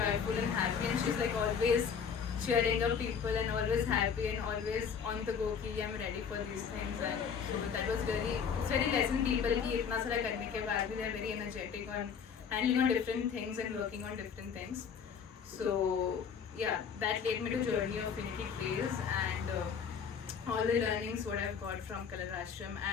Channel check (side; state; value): right; quieter; 6.8 dB